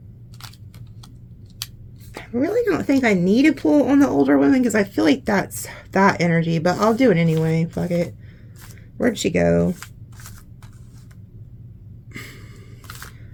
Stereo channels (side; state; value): both; identical; correlation 1.00